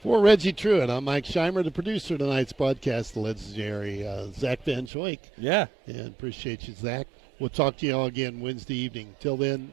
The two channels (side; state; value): left; drops out; at 4.9 s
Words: For Reggie Truitt, I'm Mike Scheimer, the producer of tonight's broadcast, the legendary Zach Van Schoik. Yeah. And appreciate you, Zach. We'll talk to you all again Wednesday evening. Till then,